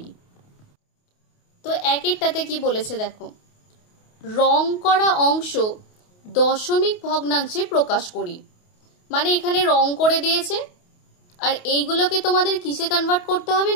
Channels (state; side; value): late; right; 28 ms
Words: তো 1-এরটাতে কি বলেছে দেখো, রং করা অংশ দশমিক ভগ্নাংশে প্রকাশ করি। মানে এখানে রং করে দিয়েছে, আর এইগুলোকে তোমাদের কিসে কনভার্ট করতে হবে